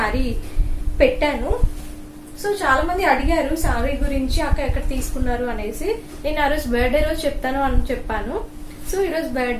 పెట్టాను. సో చాలా మంది అడిగారు సారీ గురించి, అక్క ఎక్కడ తీసుకున్నారు అనేసి. నేను ఆ రోజు బర్త్డే రోజు చెప్తాను అని చెప్పాను. సో ఈ రోజు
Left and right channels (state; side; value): identical; both; correlation 1.00